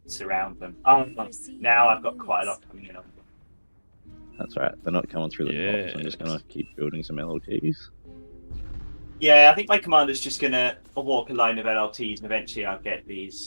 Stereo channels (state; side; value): inverted; both; correlation -1.00